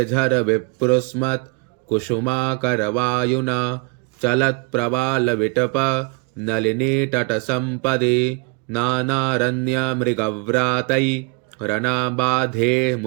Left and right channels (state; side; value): quieter; left; 29.9 dB